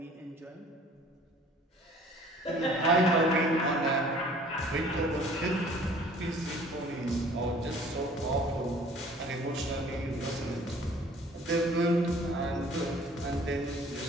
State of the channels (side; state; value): both; normal; correlation 0.52